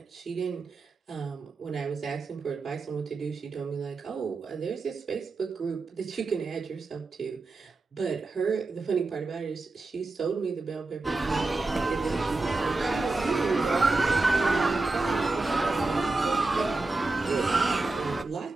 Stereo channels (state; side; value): quieter; left; 3.5 dB